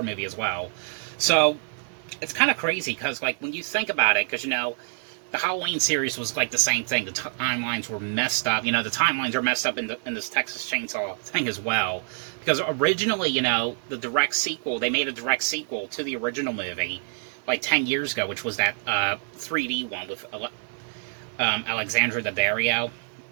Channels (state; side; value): silent; left; 61 dB below the other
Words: movie as well. So it's kind of crazy because, like, when you think about it, because, you know, the Halloween series was like the same thing. The timelines were messed up. You know, the timelines are messed up in this Texas Chainsaw thing as well. Because originally, you know, the direct sequel, they made a direct sequel to the original movie like 10 years ago, which was that 3D one with Alexandra Daddario.